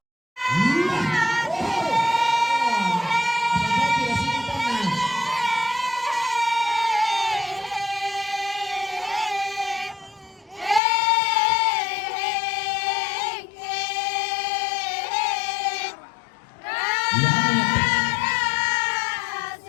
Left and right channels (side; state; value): right; drops out; at 10.8 s